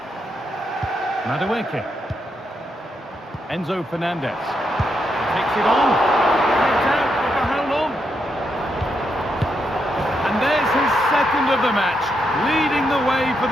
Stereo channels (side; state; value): both; normal; correlation 0.81